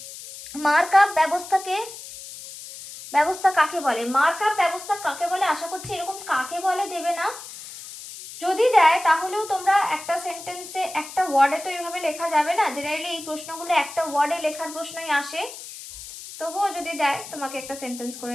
মার্কআপ ব্যবস্থা কাকে বলে। মার্কআপ ব্যবস্থা কাকে বলে, আশা করছি এরকম কাকে বলে দেবে না। যদি দেয় তাহলেও তোমরা একটা সেন্টেন্সে একটা ওয়ার্ডে তো এইভাবে লেখা যাবে না, জেনারেলি এই প্রশ্নগুলো একটা ওয়ার্ডে লেখার প্রশ্নই আসে। তবুও যদি দেয় তোমাকে একটা সেন্টেন্স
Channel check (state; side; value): noise; left; hiss, 13 dB below the sound